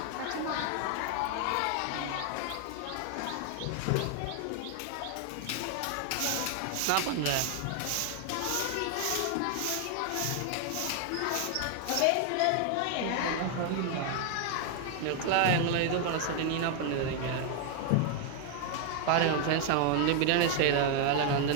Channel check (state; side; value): different; both; correlation 0.00